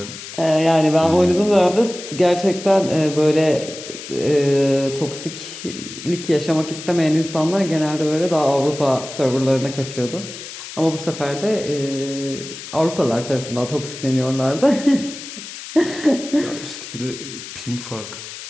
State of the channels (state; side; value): noise; left; hiss, 12 dB below the sound